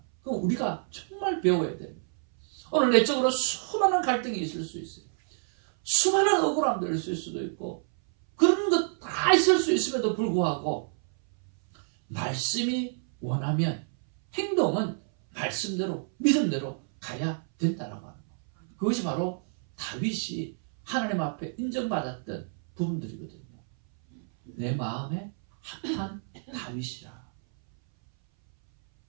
그럼 우리가 정말 배워야 됩니다. 오늘 내적으로 수많은 갈등이 있을 수 있어요. 수많은 억울함들이 있을 수도 있고 그런 것 다 있을 수 있음에도 불구하고 말씀이 원하면 행동은 말씀대로 믿음대로 가야 된다라고 하는 거예요. 그것이 바로 다윗이 하나님 앞에 인정받았던 부분들이거든요. 내 마음에 합한 다윗이라.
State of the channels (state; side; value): silent; left; 59 dB below the other